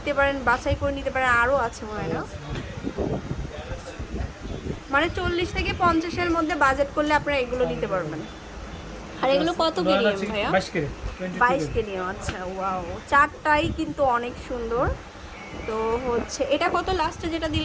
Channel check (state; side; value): identical; both; correlation 1.00